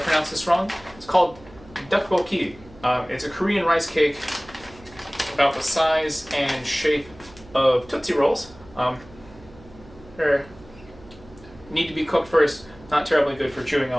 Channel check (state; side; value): noise; right; hum, 22 dB below the sound